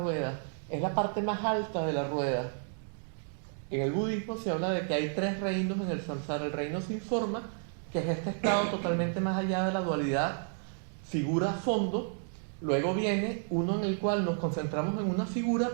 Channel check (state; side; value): silent; left; 57 dB below the other